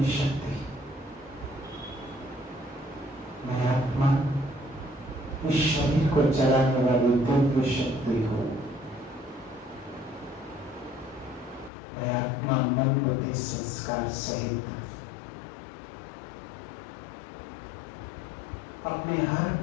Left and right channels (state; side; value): drops out; right; at 11.7 s